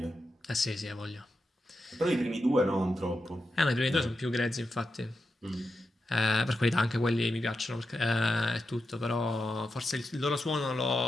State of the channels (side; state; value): both; normal; correlation 0.88